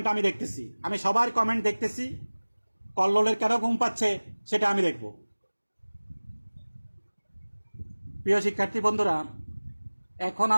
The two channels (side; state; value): both; inverted; correlation -1.00